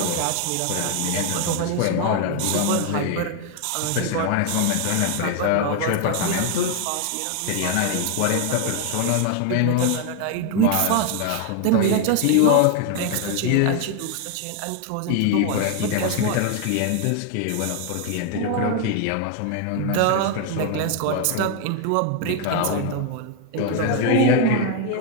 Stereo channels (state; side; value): different; both; correlation 0.01